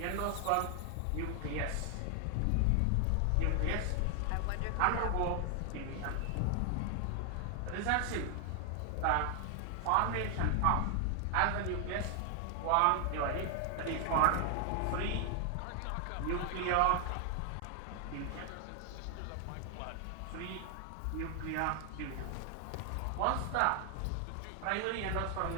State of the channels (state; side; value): different; both; correlation 0.00